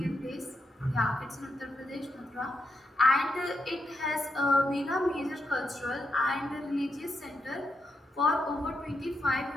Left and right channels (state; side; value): normal; both; correlation 0.82